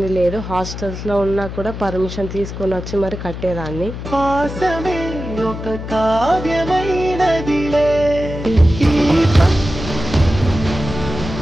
లేదు. హాస్టల్స్ లో ఉన్నా కూడా పర్మిషన్ తీసుకొని వచ్చి మరి కట్టేదాన్ని.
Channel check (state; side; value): noise; left; hum, 8 dB below the sound